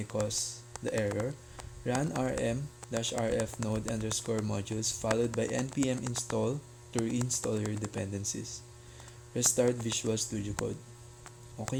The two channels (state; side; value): identical; both; correlation 1.00